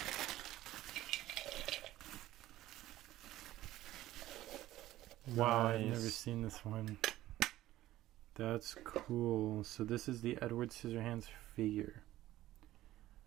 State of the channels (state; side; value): quieter; left; 15.1 dB